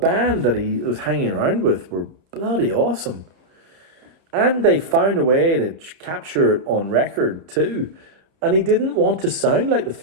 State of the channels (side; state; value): left; late; 30 ms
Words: that he was hanging around with were bloody awesome. And they found a way to capture it on record too. And he didn't want to sound like the